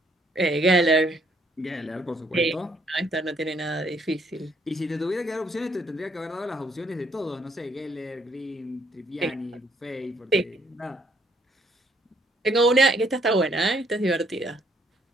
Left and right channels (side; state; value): both; normal; correlation 0.67